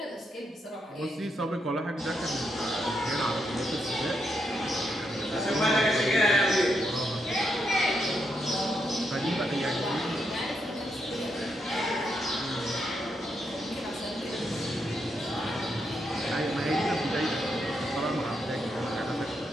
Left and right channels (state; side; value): normal; both; correlation 0.80